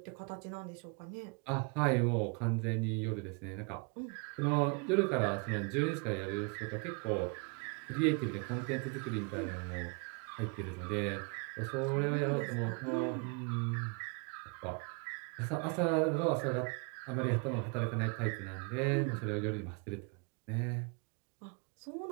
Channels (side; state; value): left; quieter; 33.2 dB